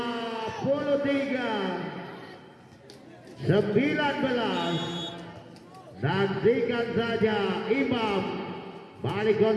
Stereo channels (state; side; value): identical; both; correlation 1.00